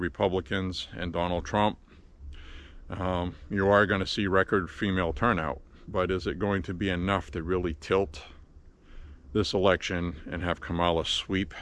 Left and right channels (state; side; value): identical; both; correlation 1.00